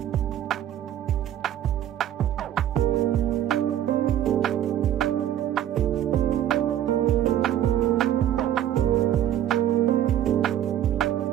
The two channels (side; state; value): left; quieter; 11.4 dB